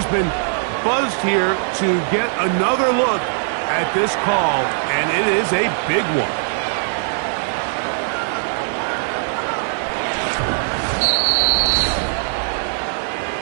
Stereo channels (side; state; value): left; silent; 66 dB below the other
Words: been buzzed here to get another look at this call, and it is a big one.